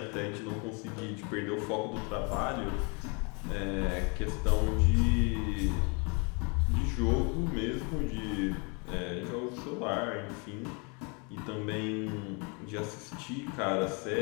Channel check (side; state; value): right; quieter; 32.8 dB